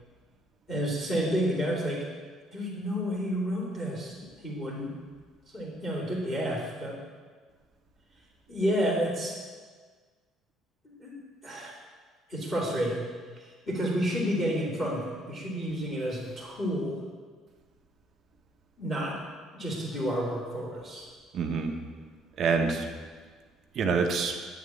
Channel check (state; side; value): normal; both; correlation 0.67